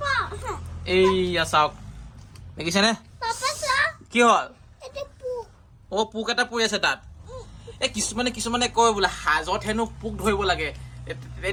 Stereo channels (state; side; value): identical; both; correlation 1.00